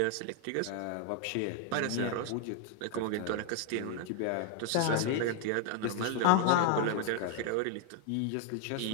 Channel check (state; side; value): different; both; correlation 0.00